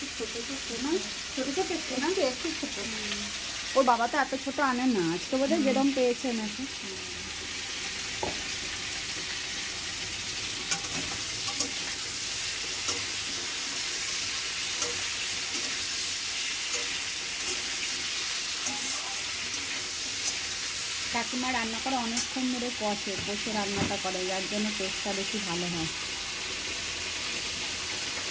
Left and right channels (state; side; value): identical; both; correlation 1.00